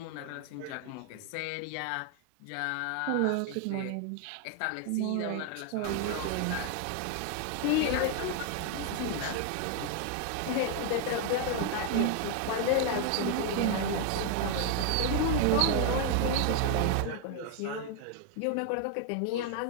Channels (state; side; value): different; both; correlation 0.00